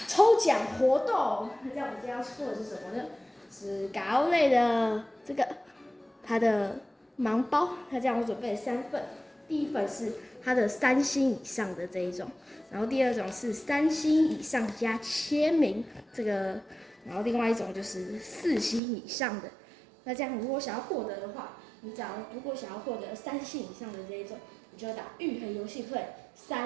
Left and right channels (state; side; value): drops out; left; at 18.8 s